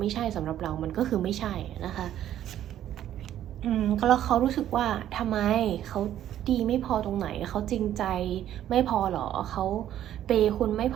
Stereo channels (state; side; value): quieter; left; 11.5 dB